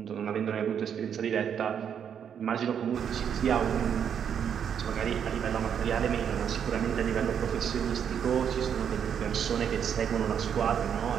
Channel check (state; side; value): quieter; left; 8.1 dB